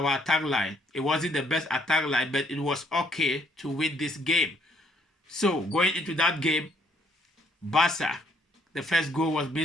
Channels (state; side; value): normal; both; correlation 0.67